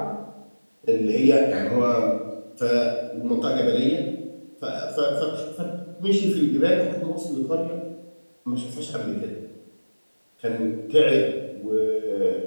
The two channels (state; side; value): inverted; both; correlation -1.00